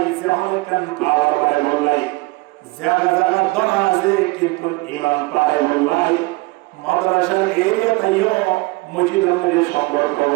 যখন কান পাওয়ার বাড়াই বললাই জায়গা জায়গা দরা আছে কিন্তু ঈমান পারে বললাই মাদ্রাসার এরিয়া তাইও মসজিদের মধ্যে সম্পর্ক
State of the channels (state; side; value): quieter; left; 23.5 dB